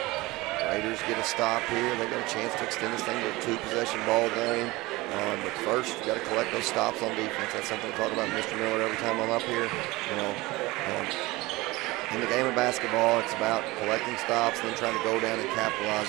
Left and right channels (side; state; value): left; quieter; 21.1 dB